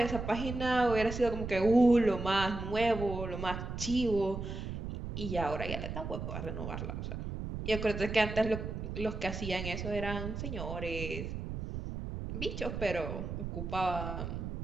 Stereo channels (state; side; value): noise; right; rumble, 6 dB below the sound